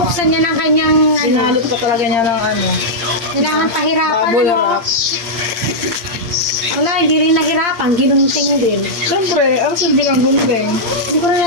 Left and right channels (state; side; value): late; left; 8.6 ms